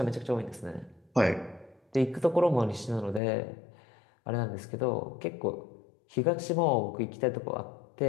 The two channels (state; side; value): drops out; right; at 3.2 s